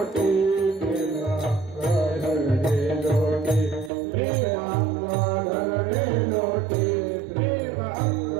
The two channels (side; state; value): left; drops out; at 3.9 s